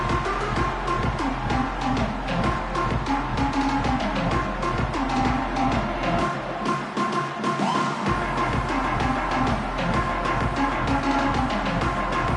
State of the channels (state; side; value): identical; both; correlation 1.00